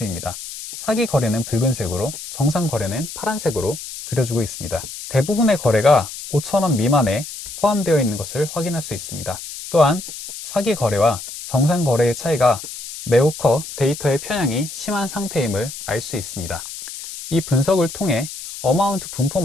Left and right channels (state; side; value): noise; left; hiss, 10 dB below the sound